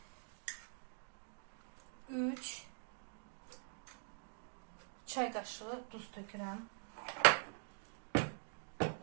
3 çay qaşığı duz tökürəm.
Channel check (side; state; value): left; silent; digital silence